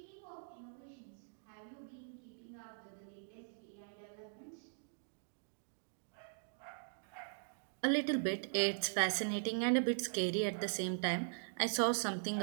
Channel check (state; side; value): silent; left; digital silence